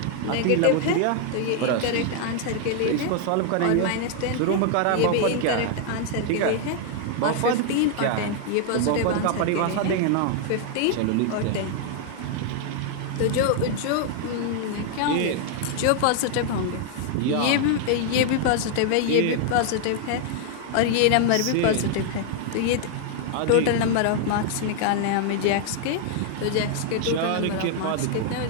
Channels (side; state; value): both; different; correlation 0.00